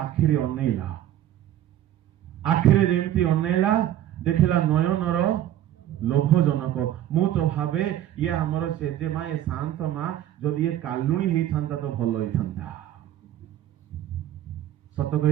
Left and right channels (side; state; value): left; quieter; 12.1 dB